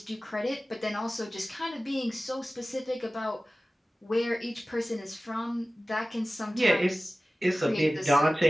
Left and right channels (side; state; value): both; normal; correlation 0.97